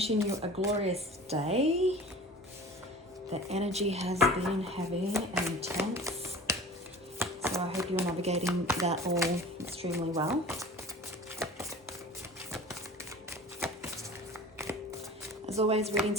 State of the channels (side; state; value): both; normal; correlation 0.40